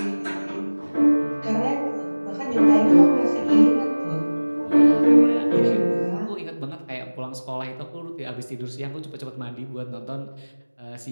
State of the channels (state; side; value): inverted; both; correlation -1.00